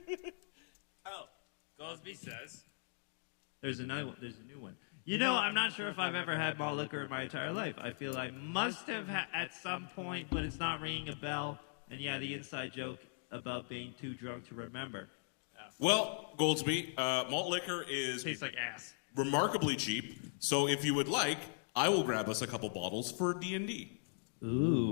Oh, Goldsby says. There's a new one. You know, I'm not sure if I've ever had malt liquor in my entire life. I feel I must have at some point, but it's not ringing a bell. And yeah, the inside joke about being too drunk to remember. Well, Goldsby, malt liquor is Tastes like ass. remarkably cheap. So if you would like, I will grab us a couple bottles for D&D.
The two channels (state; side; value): silent; right; digital silence